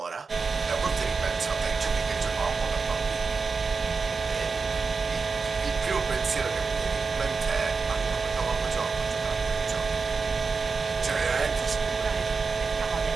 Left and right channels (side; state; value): left; quieter; 4.7 dB